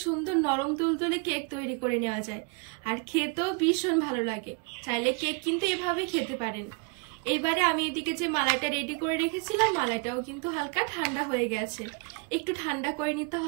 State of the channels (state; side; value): quieter; left; 33.4 dB